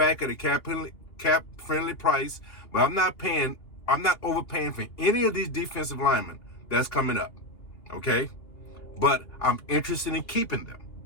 at a cap-friendly price, but I'm not overpaying for any of these defensive linemen that's coming up, okay? But I'm interested in keeping them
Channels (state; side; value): late; right; 2.8 ms